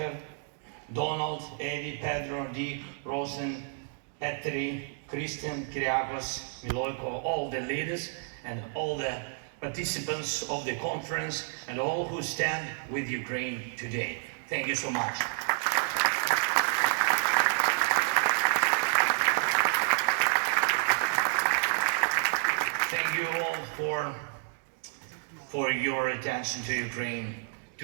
Donald, Eddie, Pedro, Dick, Rosen, Petri, Christian, Kyriakos, Miloiko, all the leaders and all the participants of the conference and all who stand with Ukraine today. Thank you so much. Thank you all for your attention to Ukraine,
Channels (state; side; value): silent; left; 58 dB below the other